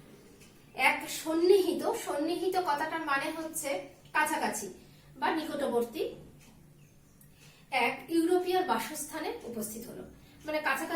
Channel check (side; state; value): both; identical; correlation 1.00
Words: এক সন্নিহিত, সন্নিহিত কথাটার মানে হচ্ছে কাছাকাছি বা নিকটবর্তী, এক ইউরোপীয় বাসস্থানে উপস্থিত হলো, মানে